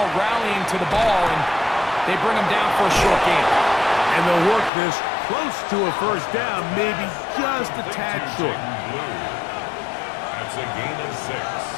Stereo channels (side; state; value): right; drops out; at 4.7 s